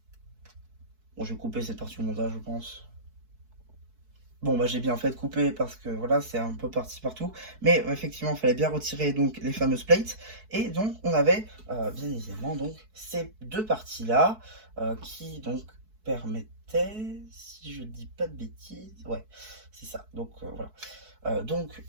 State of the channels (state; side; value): late; left; 4.6 ms